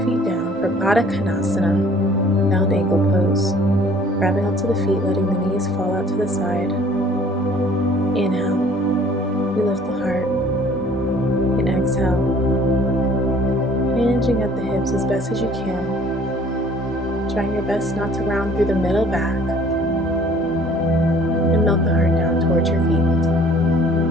feet down for Baddha Konasana, bound ankle pose. Grabbing onto the feet, letting the knees fall out to the side. Inhale, you lift the heart, and exhale, hinging at the hips as best as you can. Trying your best not to round through the middle back, and melt the heart down towards your feet.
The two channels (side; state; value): both; normal; correlation 0.54